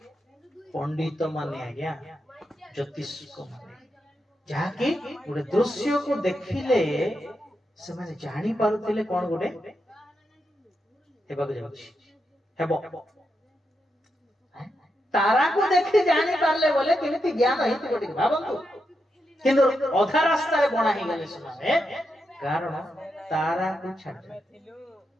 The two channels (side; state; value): both; normal; correlation 0.85